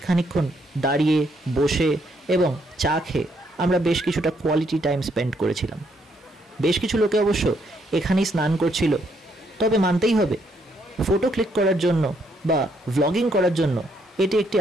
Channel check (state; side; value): normal; both; correlation 0.73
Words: খানিকক্ষণ দাঁড়িয়ে বসে এবং চা খেয়ে আমরা বেশ কিছুটা কোয়ালিটি টাইম স্পেন্ড করেছিলাম। বেশ কিছু লোকে অবশ্য এখানেই স্নান করছিল, তবে মানতেই হবে ফটো ক্লিক করার জন্য বা ভ্লগিং করার জন্য এটি একটি